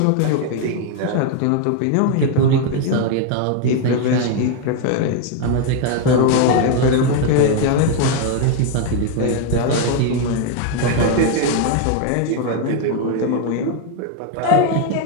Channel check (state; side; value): different; both; correlation 0.01